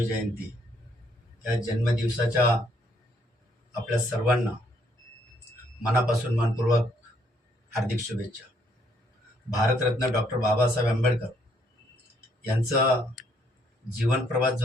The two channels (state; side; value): normal; both; correlation 0.69